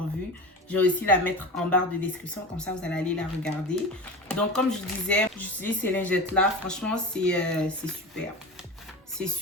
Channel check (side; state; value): both; normal; correlation 0.29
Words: vue, je vais aussi la mettre en barre de description. Comme ça, vous allez aller la regarder. Donc, comme je disais, j'utilise ces lingettes-là. Franchement, c'est super. C'est